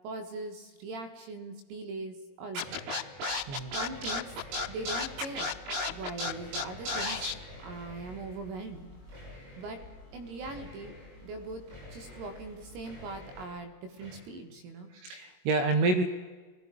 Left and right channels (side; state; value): left; late; 22 ms